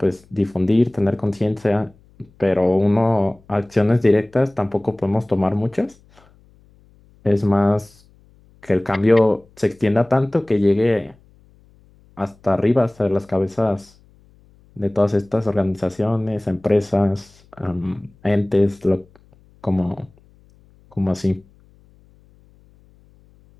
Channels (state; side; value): noise; left; hum, 30 dB below the sound